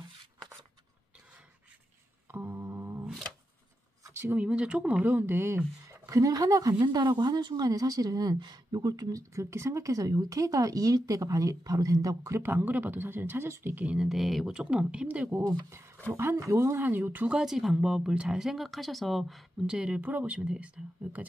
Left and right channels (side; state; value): both; normal; correlation 0.88